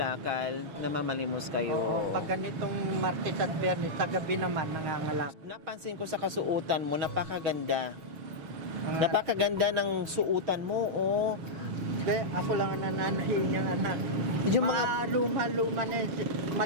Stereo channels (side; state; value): left; late; 6.4 ms